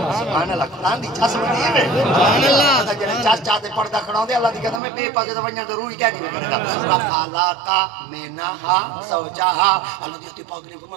سبحان اللہ قرآن دی چاس بڑی ہے سبحان اللہ چاس چاہتے پردہ کھڑا ہوں دے اللہ دی کہتا میں بے پاسے تو ونیا ضروری کیا نہیں کرے گا وَخَلَقَ مِنَّهَا زَوْجَهَا اللہ دی پاک نے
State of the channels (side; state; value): left; drops out; at 4.8 s